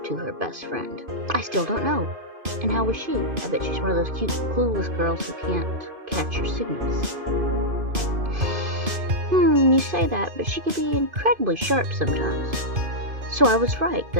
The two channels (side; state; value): left; late; 2.5 ms